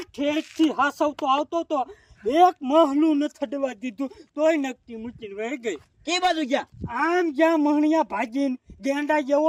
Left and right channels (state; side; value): identical; both; correlation 1.00